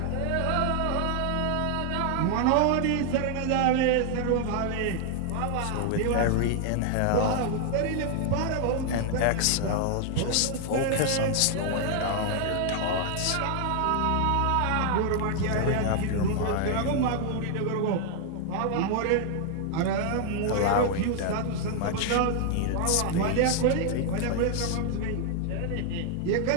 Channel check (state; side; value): different; both; correlation 0.00